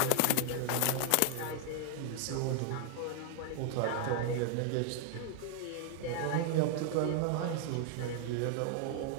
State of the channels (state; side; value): different; both; correlation 0.00